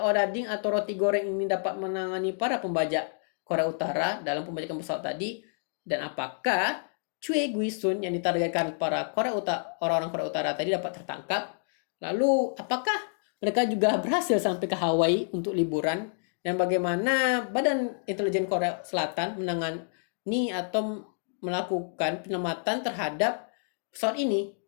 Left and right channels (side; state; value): right; silent; digital silence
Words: odading atau roti goreng ini dapat menangani para pembajak Korea Utara dalam pembajakan pesawat tadi, dan apakah Choi Guisun yang ditargetkan para orang-orang Korea Utara tadi dapat tertangkap? Lalu apakah mereka juga berhasil sampai ke Hawaii untuk liburan? Dan bagaimana Badan Intelijen Korea Selatan menangani atau melakukan penyelamatan terhadap pesawat ini?